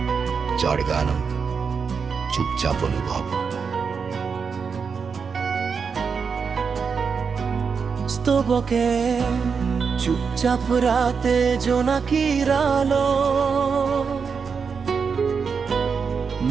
যার গান চুপচাপ অনুভব। স্তবকে চুপচাপ রাতে জোনাকির আলো,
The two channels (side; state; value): left; quieter; 5.8 dB